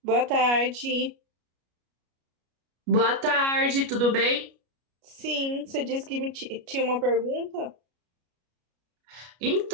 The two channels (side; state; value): left; late; 33 ms